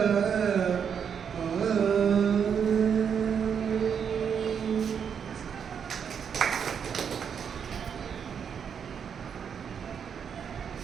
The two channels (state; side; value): quieter; left; 7.4 dB